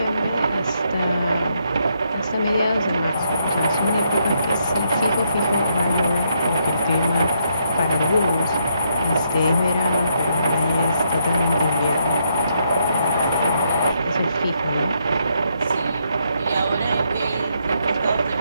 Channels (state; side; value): inverted; both; correlation -0.76